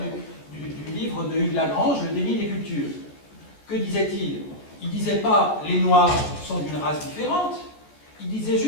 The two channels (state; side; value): late; right; 14 ms